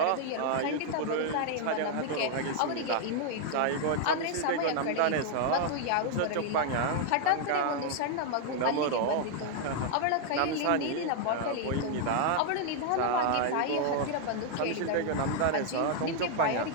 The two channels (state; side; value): different; both; correlation 0.00